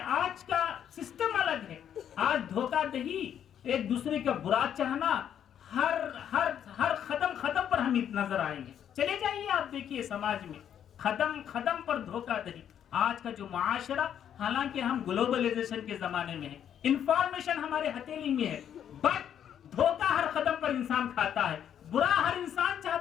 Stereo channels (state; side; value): quieter; right; 9.4 dB